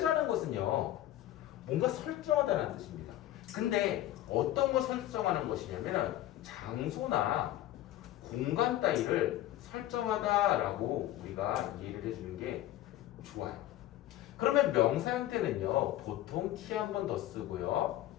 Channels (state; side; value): quieter; right; 14.1 dB